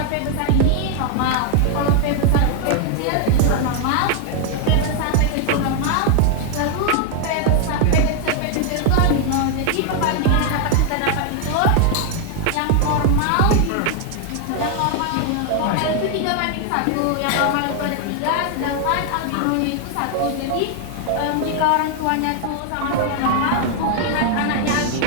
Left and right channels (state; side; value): different; both; correlation 0.00